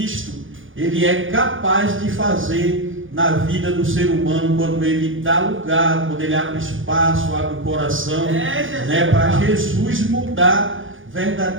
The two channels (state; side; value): late; left; 0.58 ms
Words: ele é capaz de fazer na vida do ser humano, quando ele dá lugar, quando ele abre espaço, abre o coração, né, para Jesus mudar